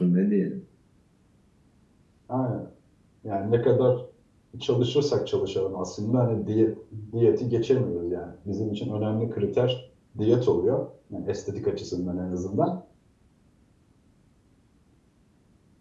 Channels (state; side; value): identical; both; correlation 1.00